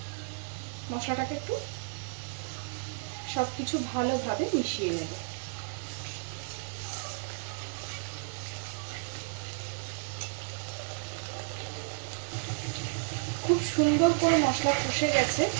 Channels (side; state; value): left; silent; digital silence